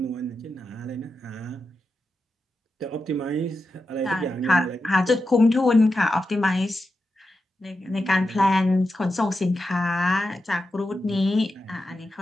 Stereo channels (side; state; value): both; normal; correlation 0.89